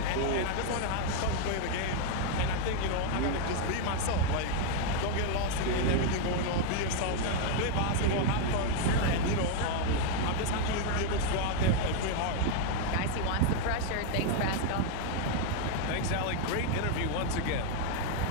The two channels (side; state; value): both; different; correlation 0.01